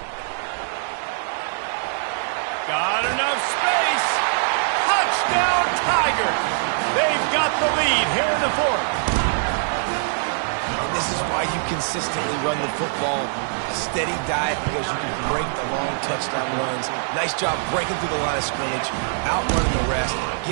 Got enough space. Touchdown, Tigers. They've got the lead here in the 4th. This is why you consistently run the football. A steady diet because you can break the long touchdown runs. Nice job breaking through the line of scrimmage, outrunning the rest,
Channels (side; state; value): left; silent; digital silence